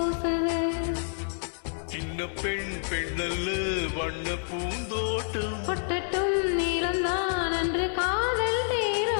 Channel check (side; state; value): right; silent; 59 dB below the other